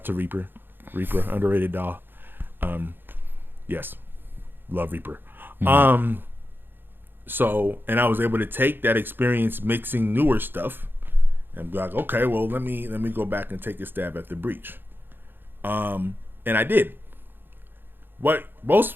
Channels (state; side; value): late; left; 0.098 ms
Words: to Reaper, underrated DAW. Yes, love Reaper. So, and I was able to take that experience mixing newer stuff and be like, okay, well, let me go back and take a stab at the Breach. And I did. What